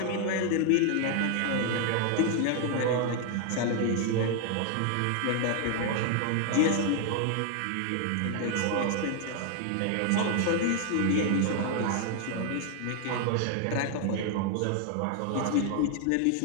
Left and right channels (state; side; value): different; both; correlation 0.00